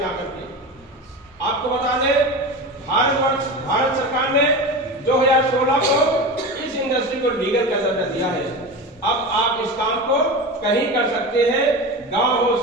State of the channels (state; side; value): normal; both; correlation 0.26